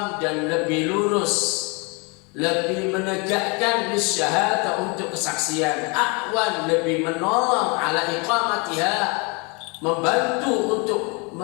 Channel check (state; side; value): quieter; right; 30.9 dB